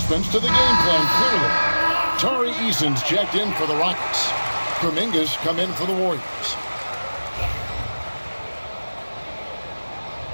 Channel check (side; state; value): both; inverted; correlation -1.00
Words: to the game plan, clearly. Tari Eason's checked in for the Rockets. Kuminga's come in for the Warriors.